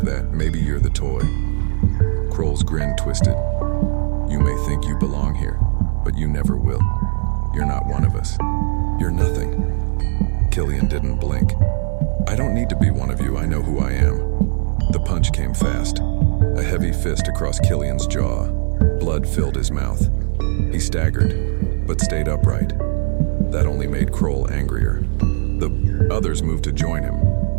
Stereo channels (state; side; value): silent; left; 56 dB below the other